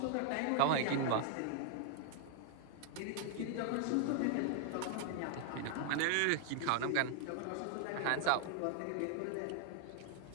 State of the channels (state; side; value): different; both; correlation 0.00